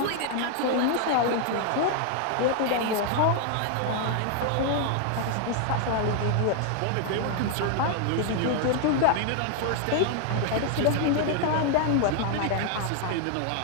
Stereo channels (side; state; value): both; different; correlation 0.00